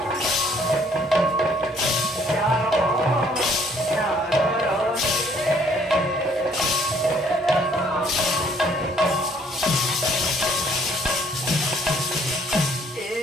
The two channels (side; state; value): both; normal; correlation 0.62